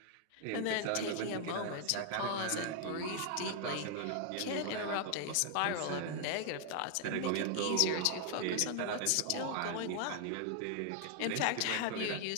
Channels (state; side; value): different; both; correlation 0.00